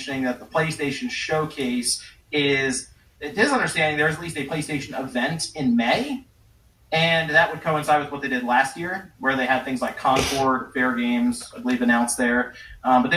that the PlayStation Showcase is, it is understanding there's at least a PlayStation event in May. And that would coincide with what they did last year, where they had things like Concord, Fair Games, I believe, announced there. But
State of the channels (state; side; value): identical; both; correlation 1.00